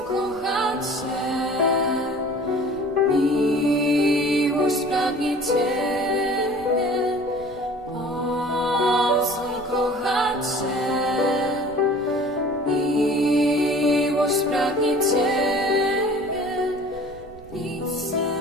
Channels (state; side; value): noise; right; rumble, 23 dB below the sound